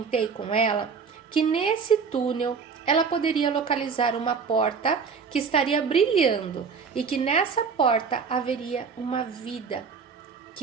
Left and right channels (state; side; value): quieter; left; 5.7 dB